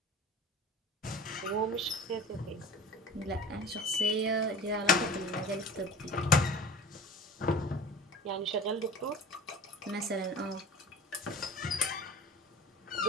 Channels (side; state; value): both; normal; correlation 0.39